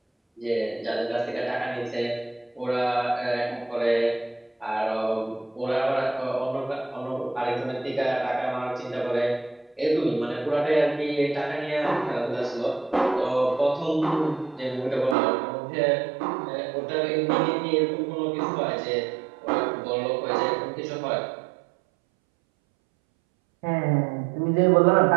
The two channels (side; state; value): left; drops out; at 15.2 s